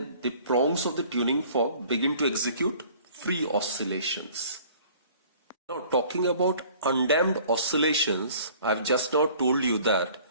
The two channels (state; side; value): inverted; both; correlation -0.52